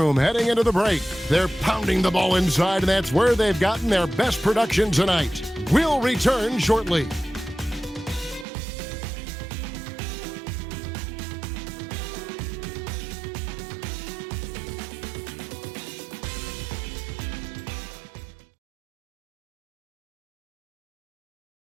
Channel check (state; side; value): drops out; left; at 8.5 s